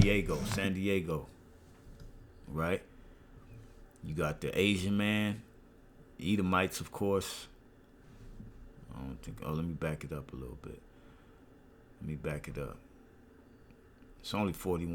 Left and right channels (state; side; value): identical; both; correlation 1.00